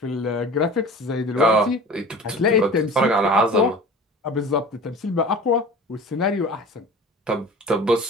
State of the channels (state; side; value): normal; both; correlation 0.39